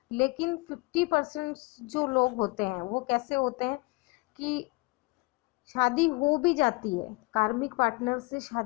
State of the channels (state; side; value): quieter; right; 26.2 dB